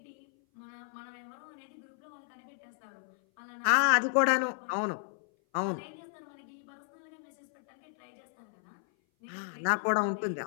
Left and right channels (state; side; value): silent; right; 55 dB below the other